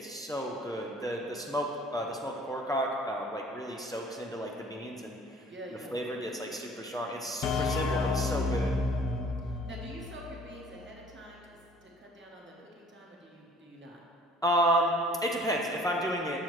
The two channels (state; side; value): normal; both; correlation 0.52